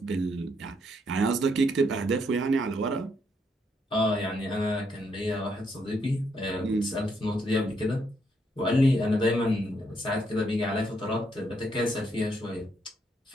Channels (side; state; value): both; normal; correlation 0.75